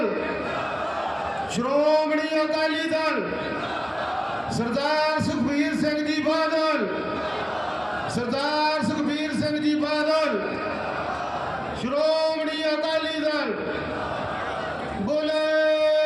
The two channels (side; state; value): both; identical; correlation 1.00